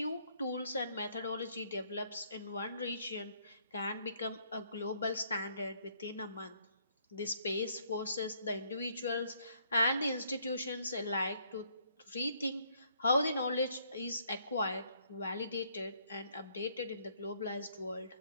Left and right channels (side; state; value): both; inverted; correlation -0.68